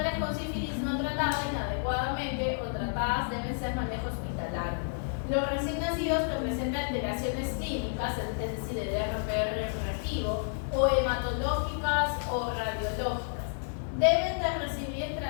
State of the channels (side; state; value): right; silent; digital silence